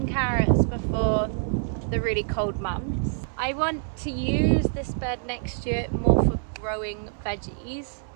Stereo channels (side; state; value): left; silent; digital silence